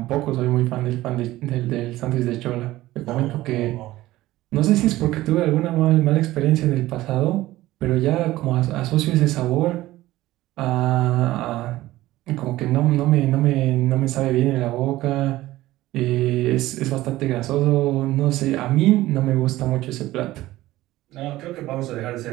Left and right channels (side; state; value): left; quieter; 16.6 dB